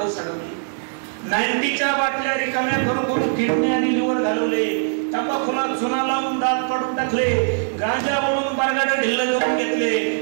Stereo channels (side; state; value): left; silent; digital silence